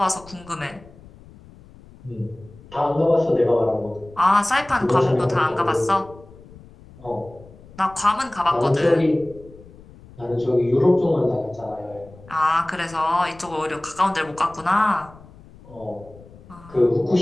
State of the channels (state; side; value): noise; left; rumble, 22 dB below the sound